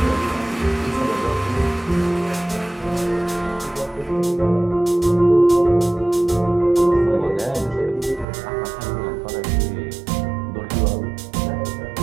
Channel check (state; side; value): drops out; left; at 8.2 s